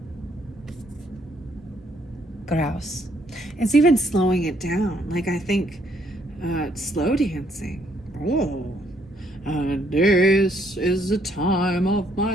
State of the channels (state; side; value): normal; both; correlation 0.69